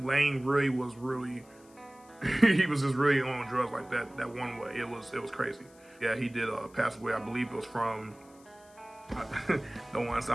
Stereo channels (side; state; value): left; noise; hiss, 27 dB below the sound